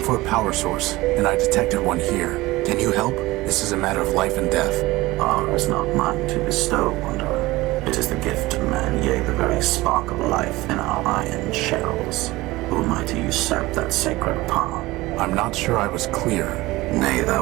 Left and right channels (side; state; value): left; quieter; 19.5 dB